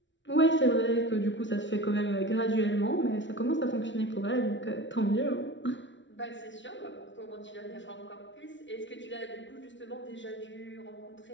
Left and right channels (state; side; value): late; right; 0.54 ms